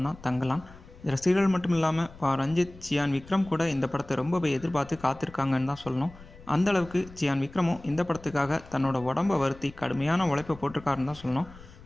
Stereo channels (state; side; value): noise; left; rumble, 20 dB below the sound